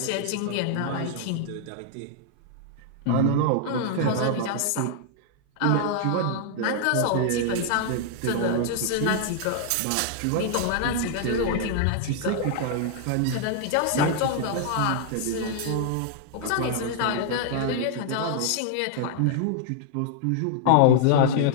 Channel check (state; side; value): different; both; correlation -0.01